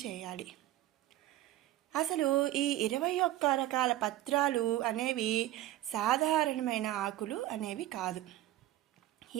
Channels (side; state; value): left; quieter; 14.5 dB